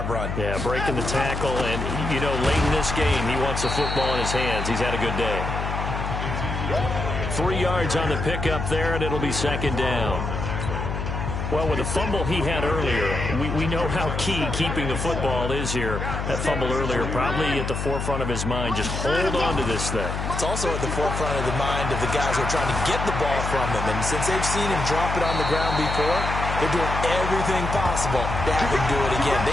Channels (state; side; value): noise; left; hum, 3 dB below the sound